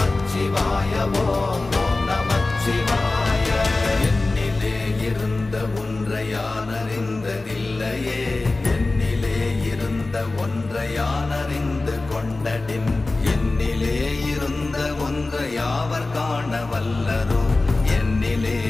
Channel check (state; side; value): quieter; right; 3.2 dB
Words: ஓம் ஓம் நமச்சிவாய. என்னிலே இருந்த ஒன்றை யான் அறிந்ததில்லையே, என்னிலே இருந்த ஒன்றை யான் அறிந்து கொண்டடின், என்னிலே இருந்த ஒன்றை யாவர் காண வல்லரோ, என்னிலே